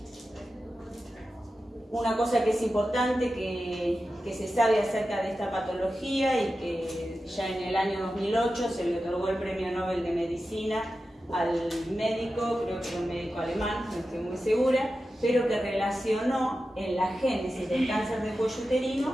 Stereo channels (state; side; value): normal; both; correlation 0.92